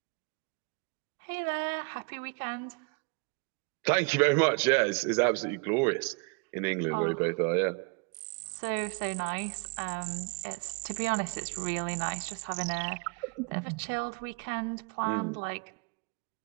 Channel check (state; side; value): quieter; left; 32.1 dB